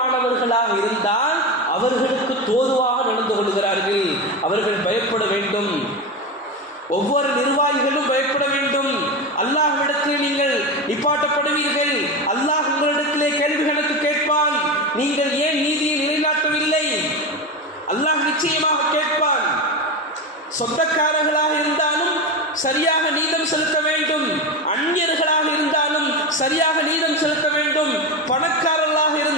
இருந்தால் அவர்களுக்கு தோதுவாக நடந்து கொள்கிறார்கள். அவர்கள் பயப்பட வேண்டும். ஒவ்வொரு நிர்வாகிகளும் பயப்பட வேண்டும். அல்லாஹ்விடத்தில் நீங்கள் நிப்பாட்டப்படுவீர்கள். அல்லாஹ் உங்களிடத்திலே கேள்வி கணக்கு கேட்பான். நீங்கள் ஏன் நீதியை நிலைநாட்டவில்லை? அல்லாஹ் நிச்சயமாக கேட்பான். சொந்தக்காரர்களாக இருந்தாலும் சரியாக நீதம் செலுத்த வேண்டும், அந்நியர்களாக இருந்தாலும் சரியாக நீதம் செலுத்த வேண்டும், பணக்காரர்களாக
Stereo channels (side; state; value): both; normal; correlation 0.19